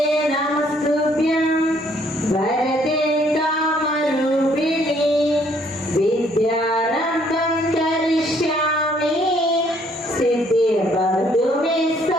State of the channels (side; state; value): both; normal; correlation 0.65